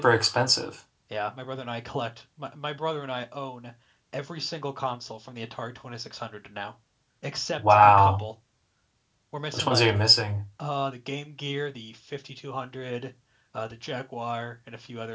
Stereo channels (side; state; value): both; identical; correlation 1.00